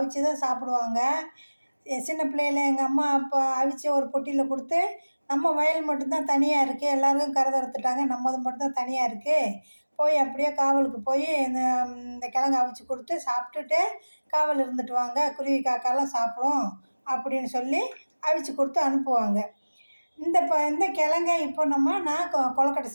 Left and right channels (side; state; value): both; inverted; correlation -1.00